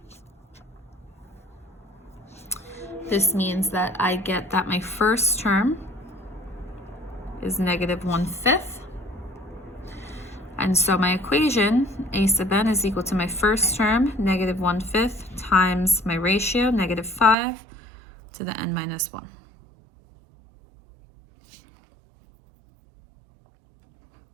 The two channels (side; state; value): left; drops out; at 17.4 s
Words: this means that I get that my first term is -1/5. And so my equation, a sub n is equal to my first term, -1/5, times my ratio, -5, to the n minus 1.